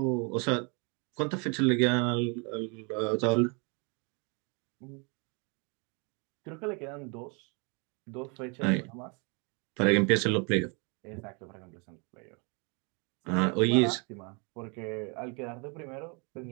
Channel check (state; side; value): quieter; left; 33.5 dB